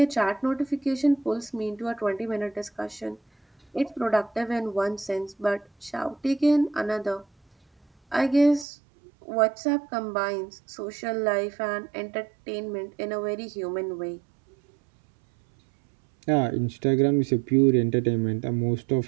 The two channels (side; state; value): left; drops out; at 8.7 s